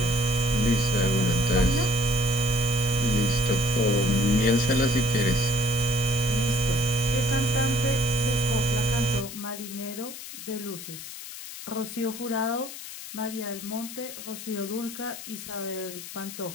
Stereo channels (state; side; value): noise; left; hiss, 11 dB below the sound